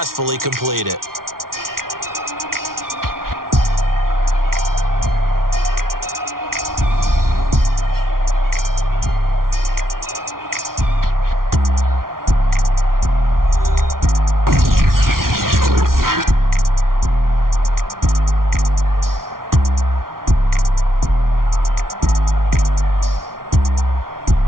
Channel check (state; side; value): late; left; 0.92 ms